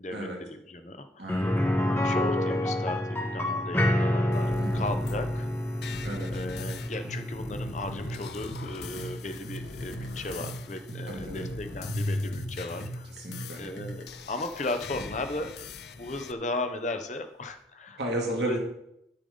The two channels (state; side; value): normal; both; correlation 0.69